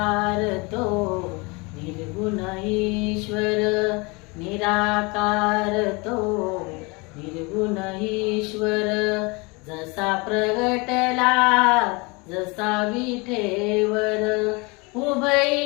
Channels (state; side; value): quieter; right; 27.6 dB